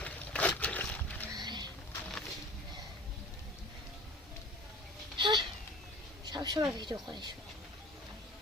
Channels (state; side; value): normal; both; correlation 0.40